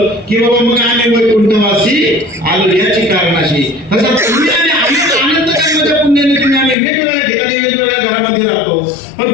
की बाबा मग आम्ही वैकुंठवासी आलो याची कारणाशी. तसं तुम्ही आणि आनंद जन्माच्या पुण्याने तुम्ही आम्ही वेगवेगळ्या ठिकाणी वेगवेगळ्या घरामध्ये राहतो, पण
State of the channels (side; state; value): right; drops out; at 6.8 s